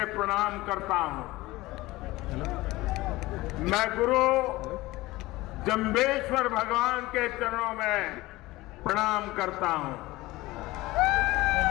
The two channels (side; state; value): right; quieter; 19.3 dB